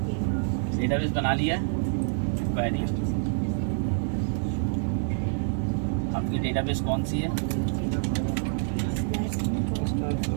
डेटाबेस बना लिया है, क्वेरी, आपकी डेटाबेस कौन सी है,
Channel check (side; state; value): left; silent; digital silence